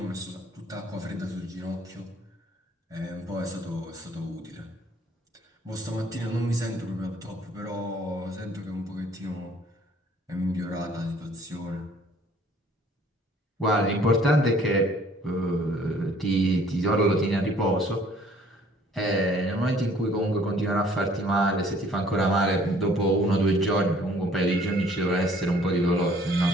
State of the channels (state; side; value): normal; both; correlation 0.57